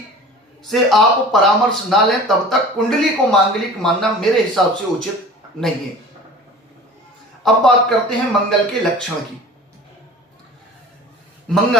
से आप परामर्श ना लें तब तक कुंडली को मांगलिक मानना मेरे हिसाब से उचित नहीं है। अब बात करते हैं मंगल के लक्षण की।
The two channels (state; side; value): normal; both; correlation 0.41